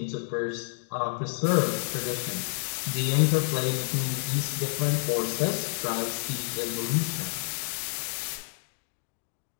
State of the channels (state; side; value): silent; right; digital silence